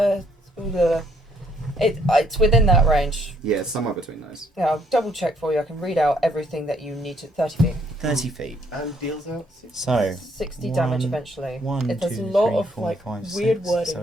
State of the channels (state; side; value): normal; both; correlation 0.68